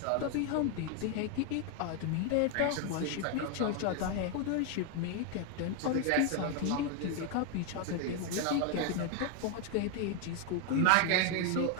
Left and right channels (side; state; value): both; different; correlation 0.01